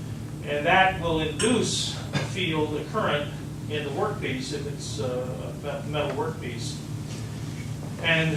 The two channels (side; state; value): both; identical; correlation 1.00